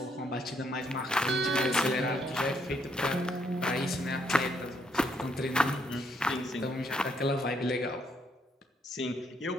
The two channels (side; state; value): both; normal; correlation 0.72